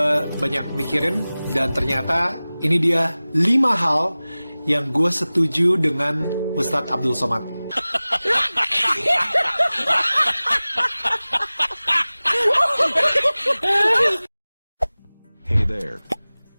banyak mikirin dan ternyata ini dia 5 hal yang gue setuju dengan Ustadz Abdul Somad. Hey there.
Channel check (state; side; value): inverted; both; correlation -0.98